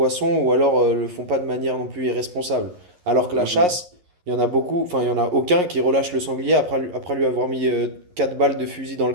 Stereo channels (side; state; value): left; late; 11 ms